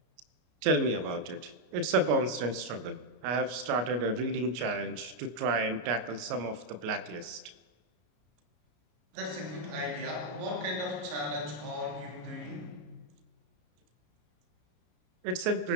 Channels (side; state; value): left; late; 33 ms